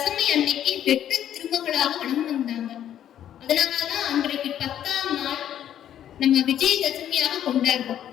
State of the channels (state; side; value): quieter; right; 10.6 dB